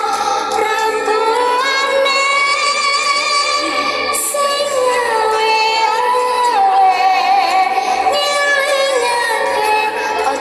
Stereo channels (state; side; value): identical; both; correlation 1.00